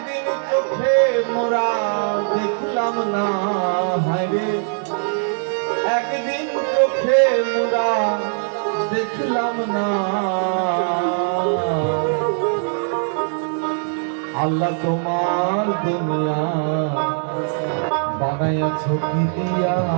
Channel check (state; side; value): silent; left; digital silence